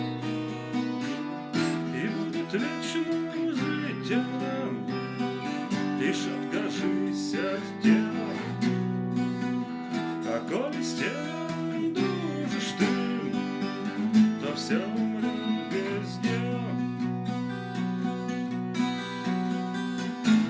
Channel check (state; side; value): identical; both; correlation 1.00